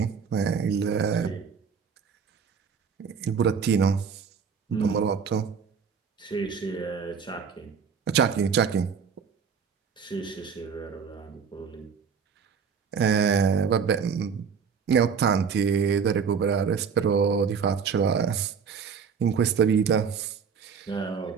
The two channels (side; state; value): left; quieter; 6.3 dB